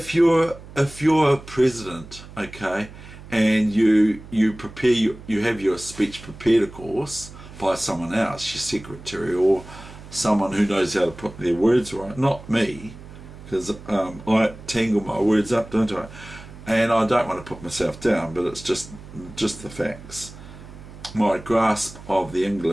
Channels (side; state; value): right; noise; hum, 17 dB below the sound